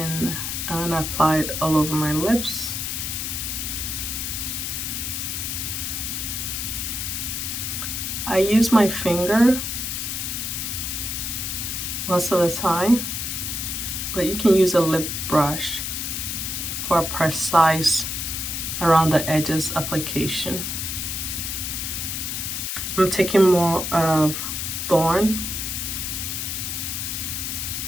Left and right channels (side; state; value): left; noise; hiss, 3 dB below the sound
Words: I'm gonna apply it all over my lips. I use my finger most of the time, but you can use a lip brush for a precise around the edges application. I'm taking more of Thorn.